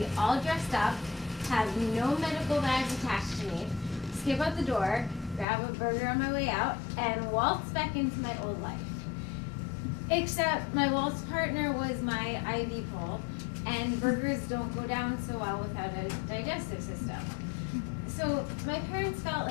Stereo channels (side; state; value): right; drops out; at 5.5 s